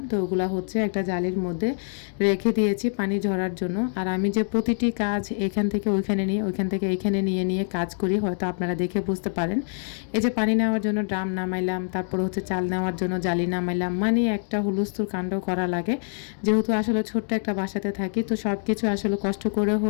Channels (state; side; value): silent; right; digital silence